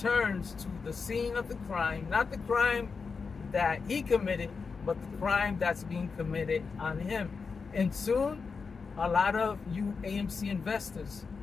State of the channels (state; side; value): quieter; right; 5.0 dB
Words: to the scene of the crime. Not the crime that he committed, but the crime that's being committed on him. And soon, a lot of you AMC investors